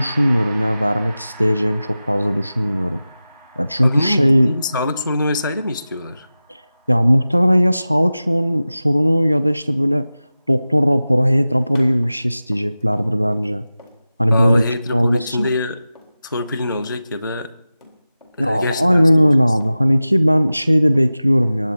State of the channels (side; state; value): both; inverted; correlation -0.95